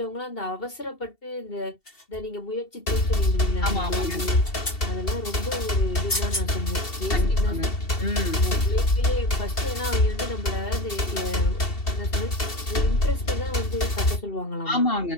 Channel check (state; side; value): late; right; 2.7 ms